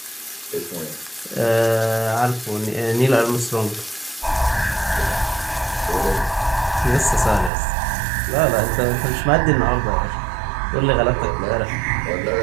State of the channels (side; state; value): left; drops out; at 7.5 s